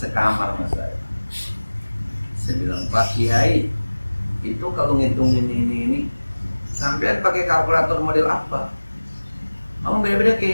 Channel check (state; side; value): inverted; both; correlation -1.00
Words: sekamar mas saya bilang Pak Kiai itu kalau ngitung ini sampean pakai kalkulator model apa? Oh beda-beda